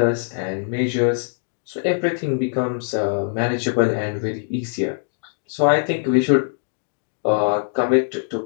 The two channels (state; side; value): silent; right; digital silence